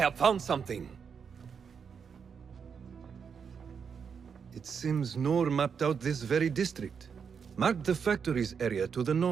found something. It seems Noor mapped out this very district. Mark the factories area to the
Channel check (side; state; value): left; quieter; 6.5 dB